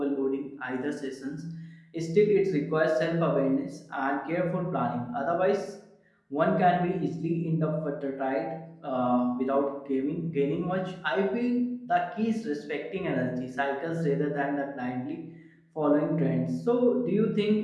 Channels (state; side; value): identical; both; correlation 1.00